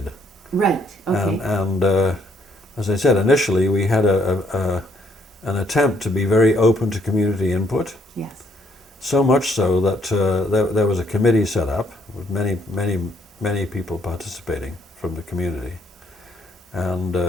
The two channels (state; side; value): normal; both; correlation 0.69